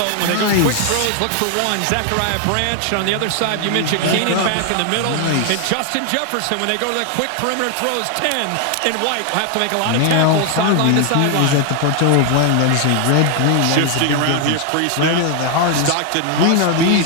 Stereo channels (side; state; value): both; different; correlation 0.00